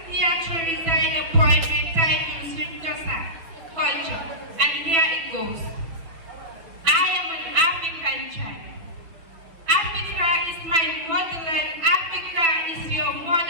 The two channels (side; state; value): left; late; 6.1 ms